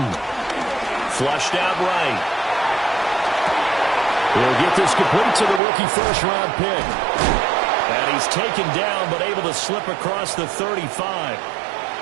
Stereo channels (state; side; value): drops out; left; at 5.6 s